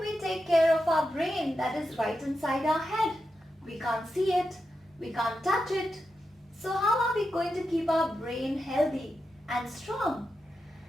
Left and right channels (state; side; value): normal; both; correlation 0.88